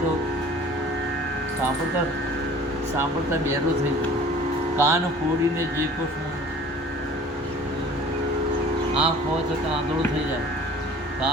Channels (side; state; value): both; normal; correlation 0.47